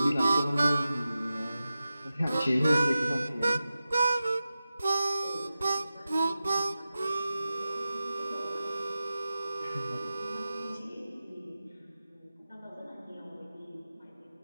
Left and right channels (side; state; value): both; inverted; correlation -0.93